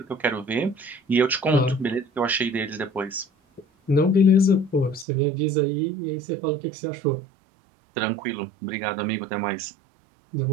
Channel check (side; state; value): left; drops out; at 5.1 s